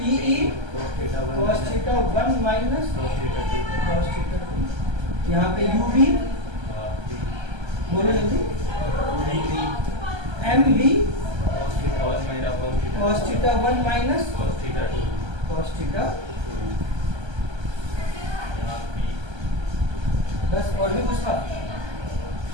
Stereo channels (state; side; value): late; left; 1.3 ms